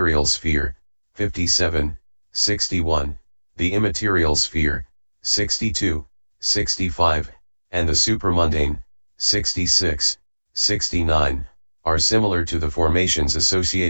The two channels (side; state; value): both; inverted; correlation -1.00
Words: sphere, 57, 61, the immaterial sphere, 62, 65, and the supramundane, 66, 69, are similar to the formations